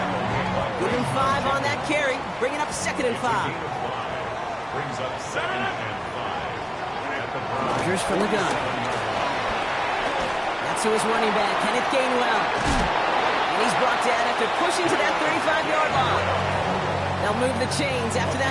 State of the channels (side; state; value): both; identical; correlation 1.00